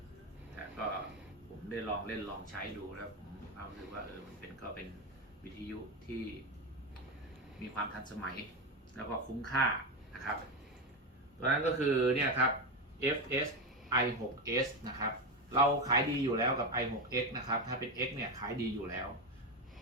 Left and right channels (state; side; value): normal; both; correlation 0.14